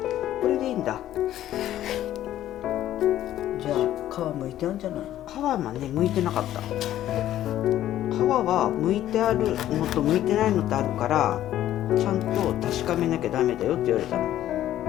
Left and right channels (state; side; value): quieter; right; 12.7 dB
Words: これでいいんだ。じゃあ皮むいてあるんじゃない？皮はね剥いてなかった。皮は剥いてあるのと剥いてないのとあるから、ちゃんと確かめなきゃダメだよって言われたの。